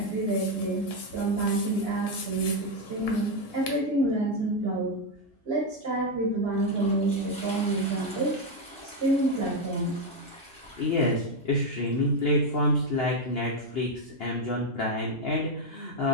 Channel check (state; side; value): normal; both; correlation 0.05